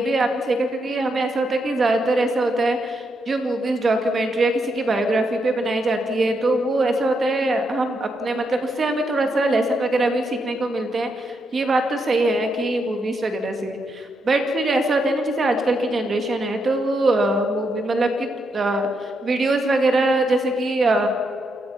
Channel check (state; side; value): normal; both; correlation 0.81